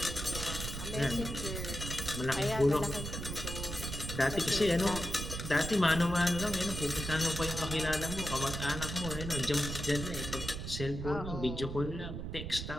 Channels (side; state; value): right; noise; rumble, 6 dB below the sound